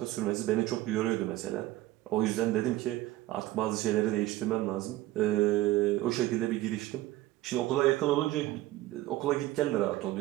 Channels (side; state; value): left; quieter; 16.2 dB